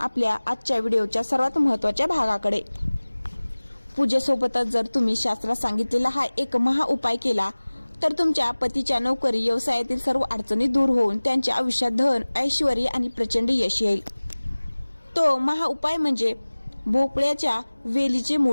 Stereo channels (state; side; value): inverted; both; correlation -1.00